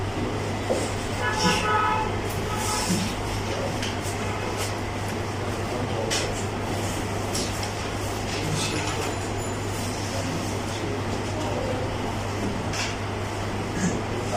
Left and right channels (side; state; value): both; identical; correlation 1.00